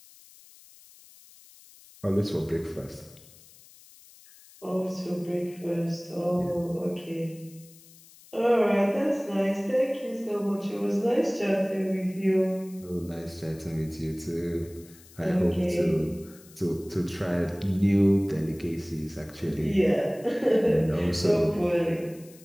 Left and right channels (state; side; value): noise; left; hiss, 23 dB below the sound